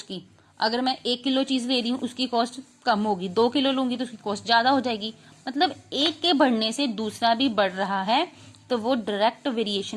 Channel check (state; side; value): identical; both; correlation 1.00